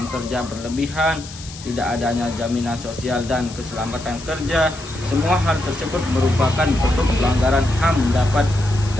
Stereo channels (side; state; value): left; noise; hiss, 15 dB below the sound